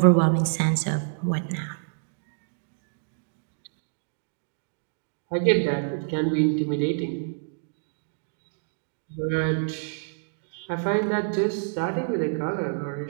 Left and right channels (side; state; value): left; silent; digital silence